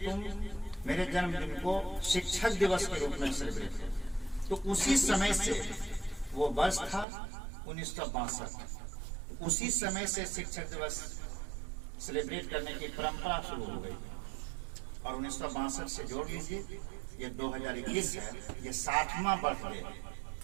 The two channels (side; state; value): left; drops out; at 7.1 s